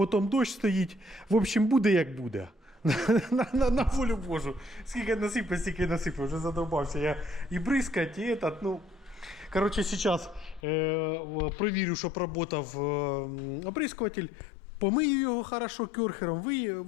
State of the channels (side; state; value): right; drops out; at 10.6 s